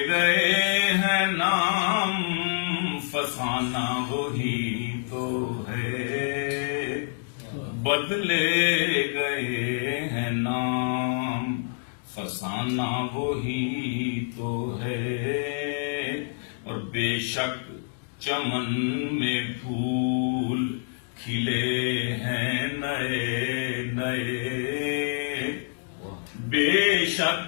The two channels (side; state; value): right; silent; digital silence